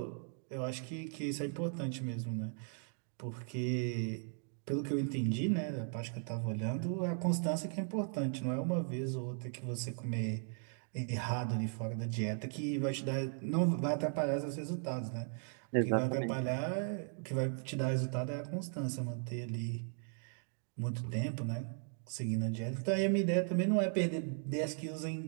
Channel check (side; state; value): left; silent; 53 dB below the other